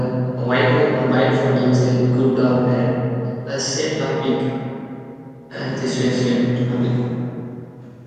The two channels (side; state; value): both; identical; correlation 1.00